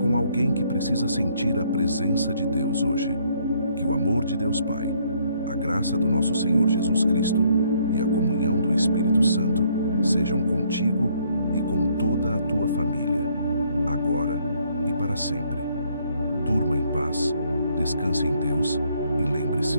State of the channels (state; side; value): inverted; both; correlation -0.67